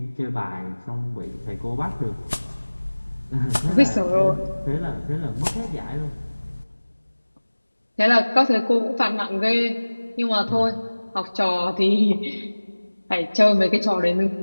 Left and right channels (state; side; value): inverted; both; correlation -1.00